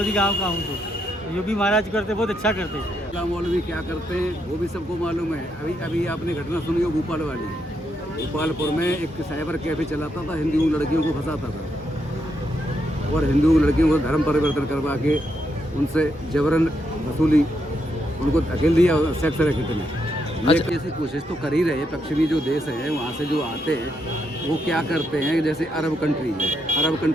गांव का हूँ। तो योगी महाराज करते बहुत अच्छा करते हैं। मौलवी क्या करते हैं वो भी सबको मालूम है। अभी आपने घटना सुनी हो भोपाल वाली। भोपालपुर में एक साइबर कैफे चलाता था, हिंदू लड़कियों को फंसाता था और हिंदू लड़कियों को धर्म परिवर्तन करवा के उनसे जबरन वसूली, उनको धकेल दिया सेक्स रैकेट में। अच्छा, ऐसी कोशिश तो कर ही रहे हैं। पश्चिमी जो देश है वहाँ से जो आते हैं वो क्या करते हैं, जैसे अरब कंट्री है, अरब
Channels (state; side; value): normal; both; correlation 0.79